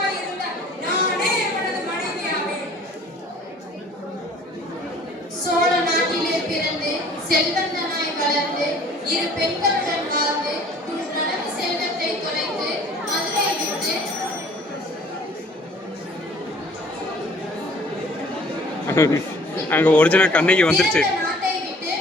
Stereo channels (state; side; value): normal; both; correlation 0.52